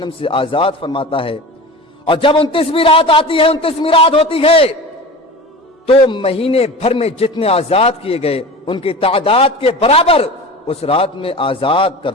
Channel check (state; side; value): normal; both; correlation 0.33